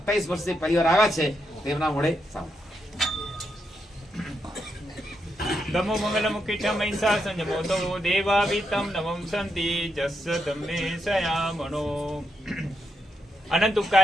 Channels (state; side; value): normal; both; correlation 0.82